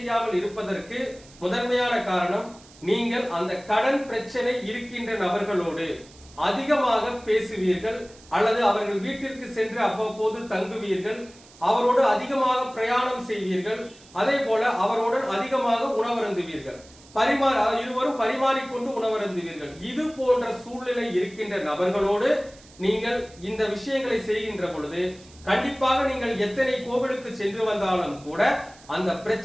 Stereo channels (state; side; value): noise; right; hiss, 24 dB below the sound